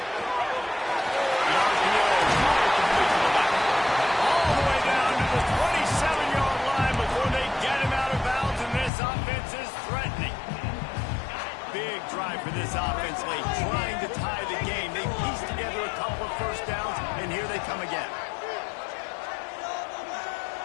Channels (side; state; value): right; drops out; at 8.9 s